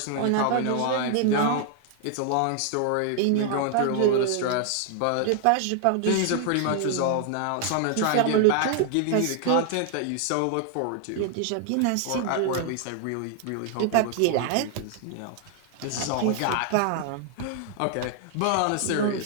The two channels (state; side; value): different; both; correlation 0.00